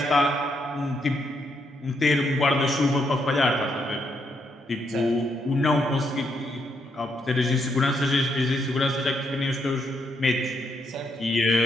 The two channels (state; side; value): normal; both; correlation 0.77